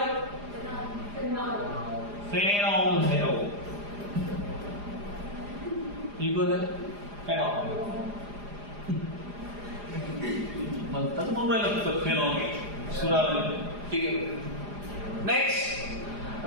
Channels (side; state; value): left; late; 4.9 ms